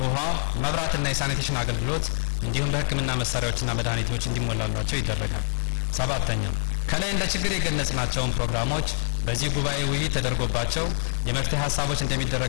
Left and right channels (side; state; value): right; silent; digital silence